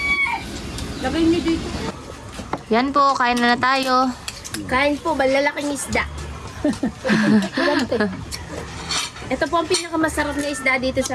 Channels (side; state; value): both; identical; correlation 1.00